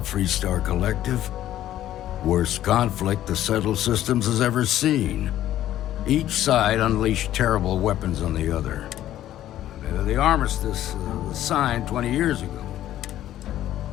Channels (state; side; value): quieter; right; 12.8 dB